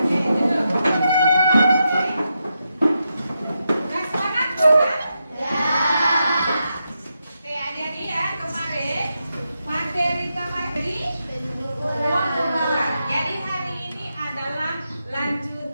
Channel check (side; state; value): both; inverted; correlation -0.86